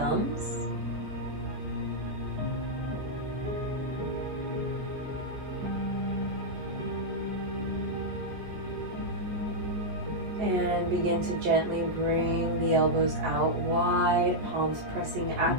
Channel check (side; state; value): left; late; 14 ms